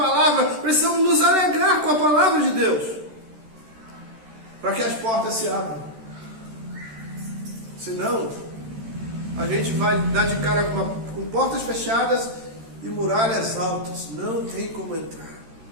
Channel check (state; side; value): late; left; 13 ms